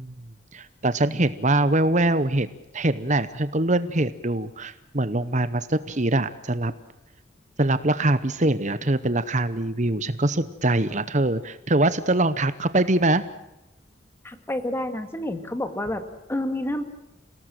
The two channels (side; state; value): both; normal; correlation 0.49